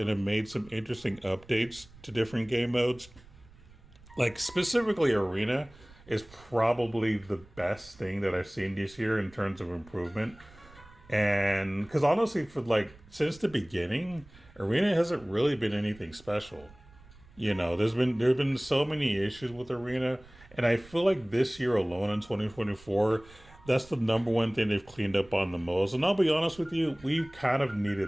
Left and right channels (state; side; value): noise; right; rumble, 23 dB below the sound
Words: have made some interesting updates to different game modes. Like specifically Arena is probably the best thing that I've seen this year in terms of improvement. And because honestly, since the beginning, Arena hasn't really been anything special. There have been so many issues with Arena, and I feel like this year alone in 2024, that's the number one thing they've cleaned up on the most. And I'll be honest with you, we kind of